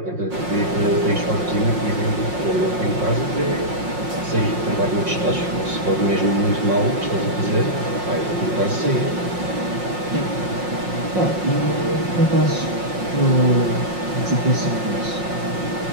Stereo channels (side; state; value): left; late; 5.5 ms